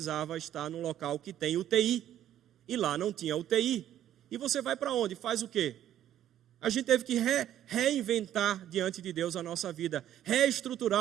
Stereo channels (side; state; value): left; quieter; 11.5 dB